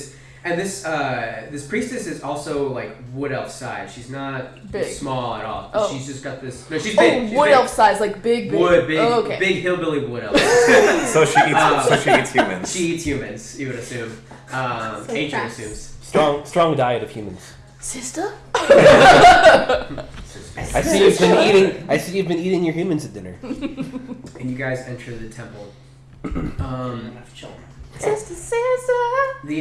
And this priestess is also like wood elf size. She's not Big. small at all. Oh. She's just got this. No, she's big. She's Wood big. elf size, like big. Wood, big, Oh, okay. big hillbilly wood elf. So she eats humans. She eats humans. You would assume. Ancient fast. assumes. Strong diet of humans. Sister? I see you've been eating your humans at dinner. And you guys enter the temple. Sister.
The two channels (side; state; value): both; identical; correlation 1.00